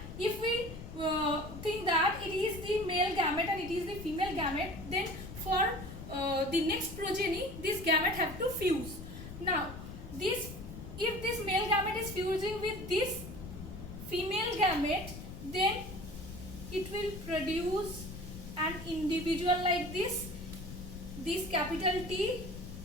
if we think gamete and it is the female gamete, then for the next progeny this gamete have to fuse. Now this, if this male gamete is fusing with this female gamete, then it will produce an individual like this capital T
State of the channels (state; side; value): noise; left; rumble, 11 dB below the sound